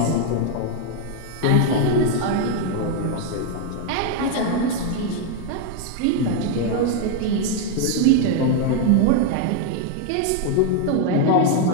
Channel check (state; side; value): different; both; correlation 0.01